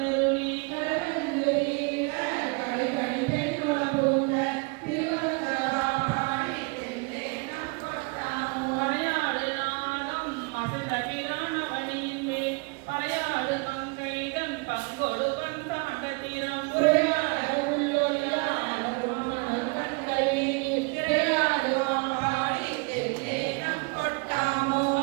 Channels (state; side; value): quieter; left; 30.7 dB